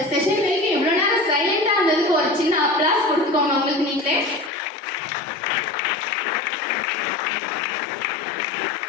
செஷன் வரைக்கும் இவ்வளவு நேரம் சைலண்டா இருந்ததுக்கு ஒரு சின்ன அப்ளாஸ் கொடுத்துக்கோங்க உங்களுக்கு நீங்களே.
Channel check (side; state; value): right; drops out; at 4.5 s